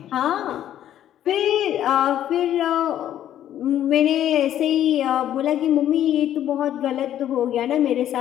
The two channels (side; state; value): right; quieter; 11.4 dB